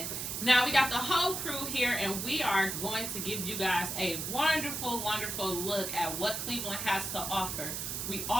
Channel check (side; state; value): right; noise; hiss, 4 dB below the sound